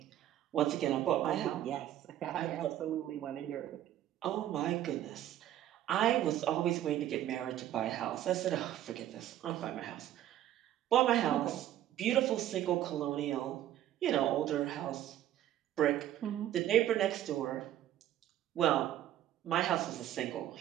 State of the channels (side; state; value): left; quieter; 12.3 dB